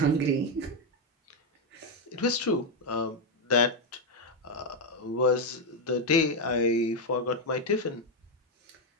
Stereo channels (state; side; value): normal; both; correlation 0.04